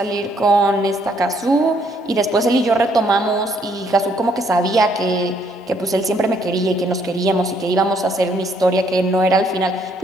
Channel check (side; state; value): both; normal; correlation 0.68